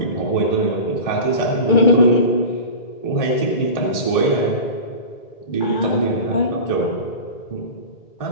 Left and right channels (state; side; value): late; right; 2.2 ms